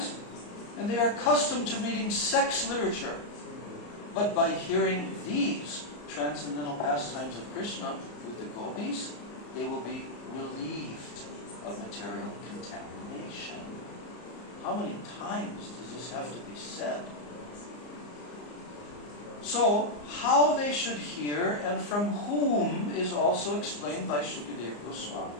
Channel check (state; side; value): late; right; 34 ms